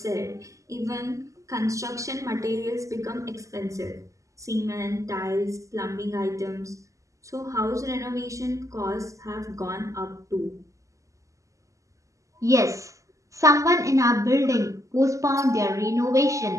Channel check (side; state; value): left; late; 0.16 ms